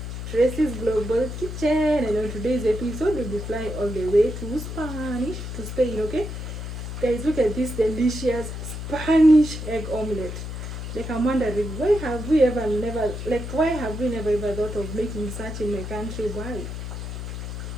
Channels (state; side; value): noise; left; hum, 7 dB below the sound